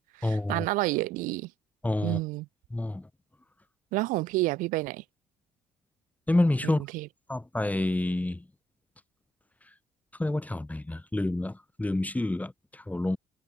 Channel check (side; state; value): both; normal; correlation 0.72